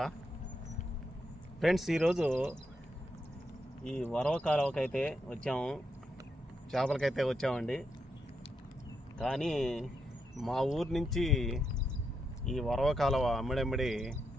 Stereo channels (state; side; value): normal; both; correlation 0.82